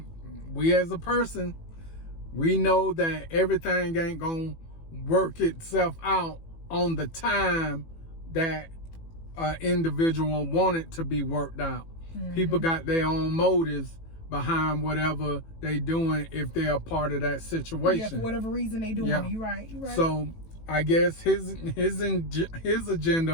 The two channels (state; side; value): late; right; 18 ms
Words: as a person, we know that everything ain't gonna work itself out on the time that an individual want it to be worked out. People got their own motives behind whatever they doing if they're a part of that situation. Yeah, for whatever reason they doing it. You're right. So I guess his